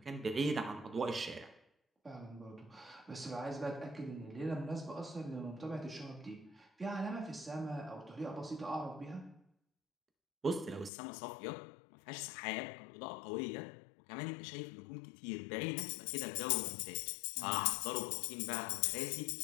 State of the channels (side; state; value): right; drops out; at 10.9 s